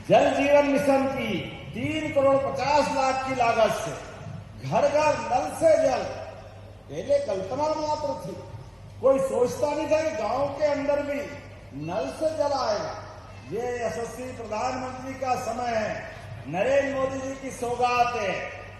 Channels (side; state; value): both; identical; correlation 1.00